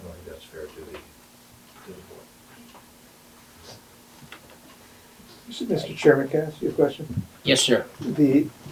don't think that's fair to the board. Mr. Chairman, can I ask you a question? Yes, sir.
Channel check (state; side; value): identical; both; correlation 1.00